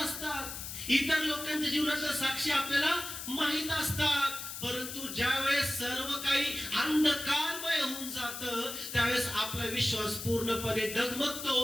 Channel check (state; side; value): noise; left; hiss, 8 dB below the sound